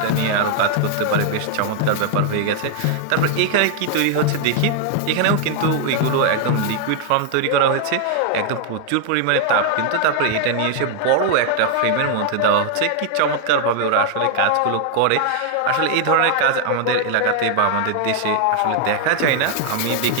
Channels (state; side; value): different; both; correlation 0.00